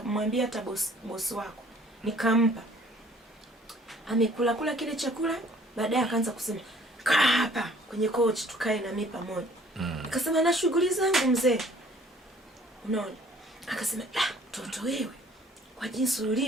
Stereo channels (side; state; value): both; normal; correlation 0.56